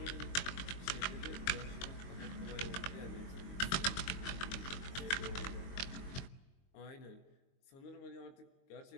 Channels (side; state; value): right; late; 22 ms